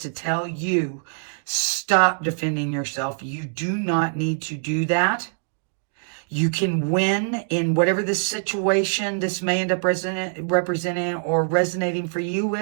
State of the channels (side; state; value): left; silent; digital silence